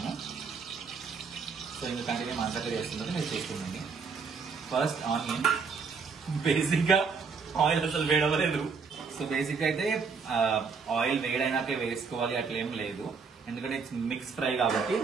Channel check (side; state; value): left; quieter; 5.3 dB